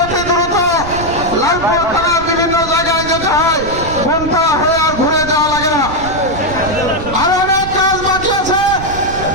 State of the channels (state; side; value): noise; right; rumble, 10 dB below the sound